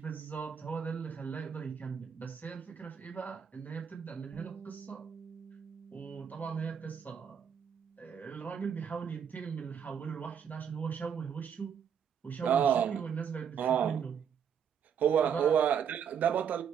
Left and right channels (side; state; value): left; quieter; 7.7 dB